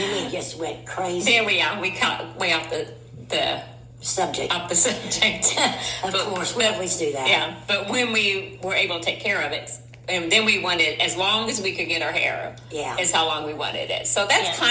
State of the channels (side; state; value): both; identical; correlation 1.00